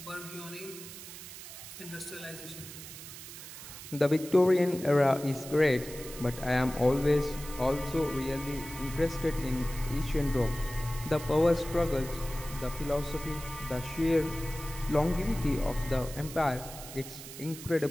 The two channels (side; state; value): right; noise; hiss, 13 dB below the sound